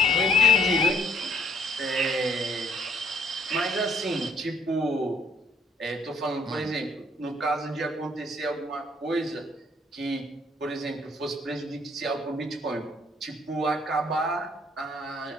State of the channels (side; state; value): both; normal; correlation 0.61